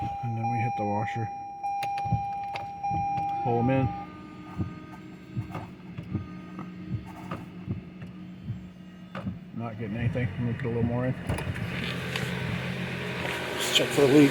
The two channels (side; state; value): both; identical; correlation 1.00